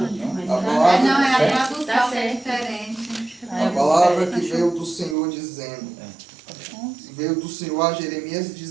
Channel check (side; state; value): left; drops out; at 5.2 s